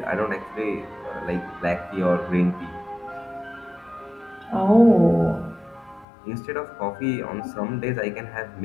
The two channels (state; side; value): drops out; right; at 6.1 s